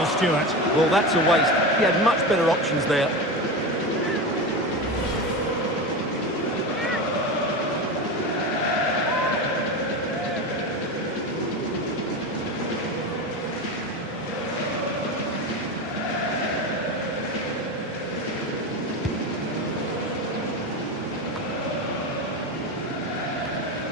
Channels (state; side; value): normal; both; correlation 0.22